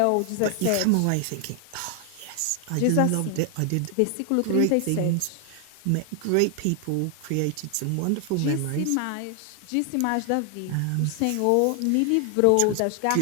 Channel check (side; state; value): both; different; correlation 0.00